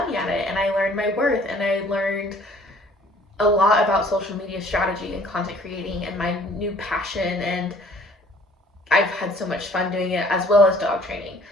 at it, and I learned my worth, and I learned a lot about social media strategy and content creating and my new passion, and I've had so much fun doing it, as well as dog training.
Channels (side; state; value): both; normal; correlation 0.55